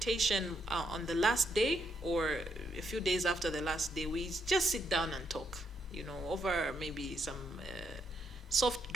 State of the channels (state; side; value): normal; both; correlation 0.77